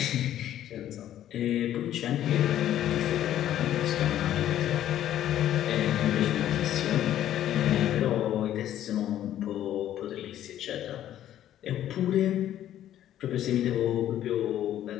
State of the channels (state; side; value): quieter; right; 11.8 dB